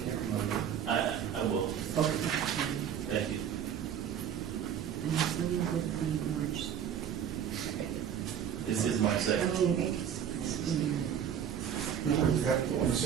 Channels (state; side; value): quieter; left; 8.8 dB